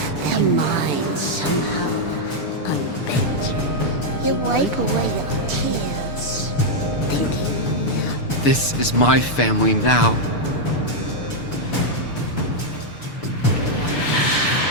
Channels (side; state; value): right; late; 6.8 ms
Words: Their minds somehow unbent. You wipe away your tears, thinking, This is my family now.